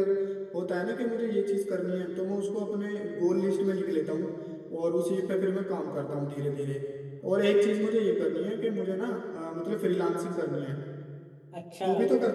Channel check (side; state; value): both; identical; correlation 1.00